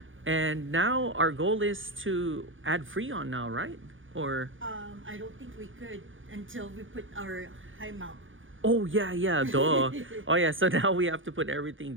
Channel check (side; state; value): left; late; 0.57 ms